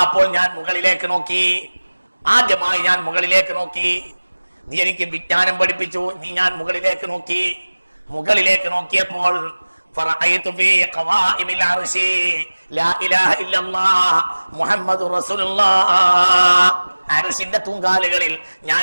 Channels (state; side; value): inverted; both; correlation -1.00